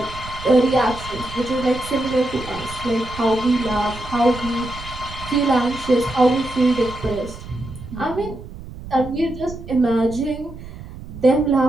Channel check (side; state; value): right; noise; rumble, 13 dB below the sound